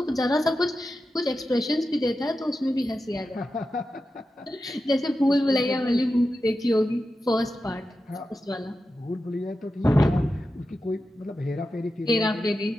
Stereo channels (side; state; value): both; normal; correlation 0.91